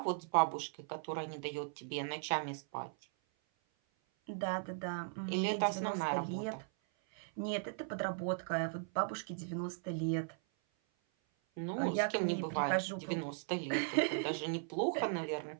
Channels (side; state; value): left; silent; 53 dB below the other